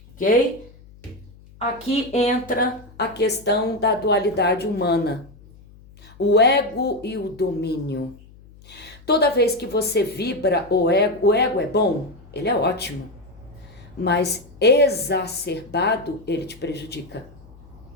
Ok? Aqui entra a questão da dualidade humana. O ego e o domínio. Toda vez que você vibra o ego é bom, ele é ótimo, mas exacerbado ele te prejudica.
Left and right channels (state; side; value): noise; left; hum, 23 dB below the sound